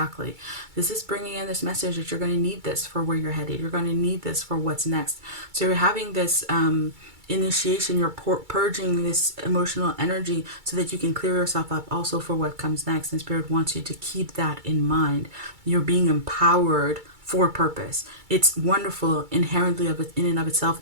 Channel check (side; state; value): left; late; 2.3 ms